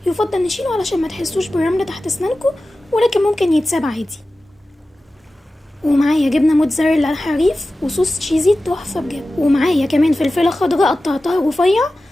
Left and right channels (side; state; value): both; normal; correlation 0.95